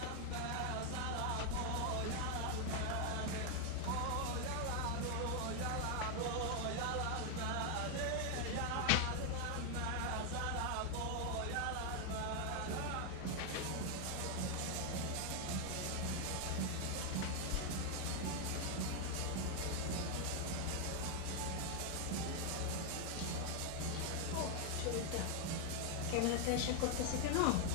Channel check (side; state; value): both; different; correlation 0.00